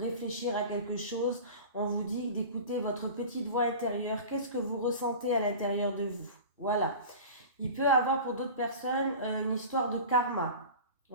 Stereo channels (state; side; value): inverted; both; correlation -0.35